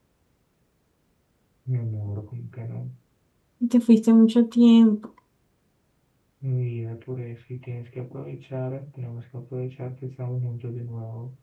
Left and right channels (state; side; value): identical; both; correlation 1.00